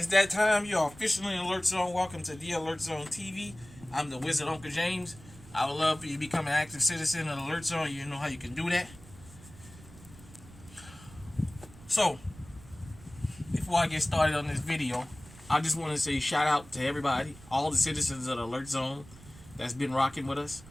that time. You are officially in Alert Zone. Welcome to the Alert Zone TV. I'm the Wizard Uncle James. I would love for you to become an active citizen of Alert Zone. You know how you can do that. So, before I get started on this video, I just want to say shout out to everybody, all the citizens of the Alert Zone that's been rocking with us.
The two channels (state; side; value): noise; right; rumble, 20 dB below the sound